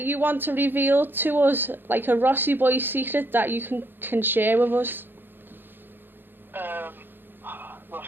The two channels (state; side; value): late; left; 0.097 ms